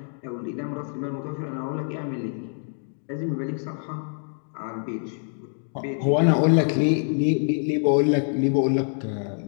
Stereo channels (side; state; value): right; silent; 60 dB below the other